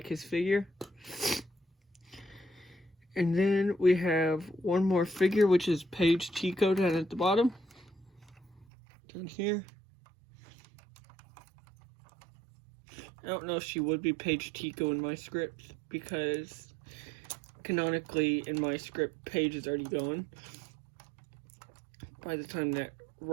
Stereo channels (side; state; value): left; drops out; at 8.7 s